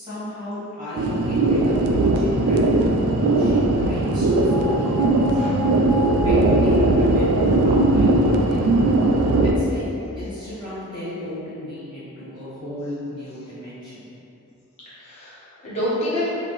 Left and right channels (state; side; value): normal; both; correlation 0.36